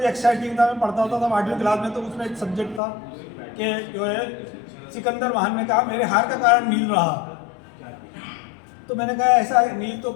एक्साइटिंग था, मैं पढ़ता होता था 8वीं क्लास में, तो उसमें एक सब्जेक्ट था कि जो है सिकंदर महान ने कहा मेरे हार का कारण नील रहा। तो मैंने कहा ऐसा नील तो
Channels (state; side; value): drops out; right; at 2.8 s